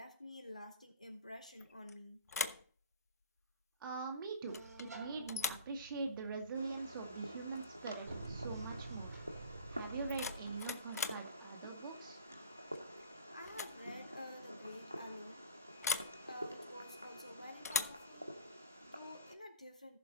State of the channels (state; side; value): inverted; both; correlation -0.43